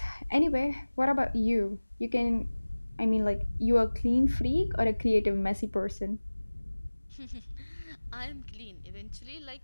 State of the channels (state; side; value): inverted; both; correlation -1.00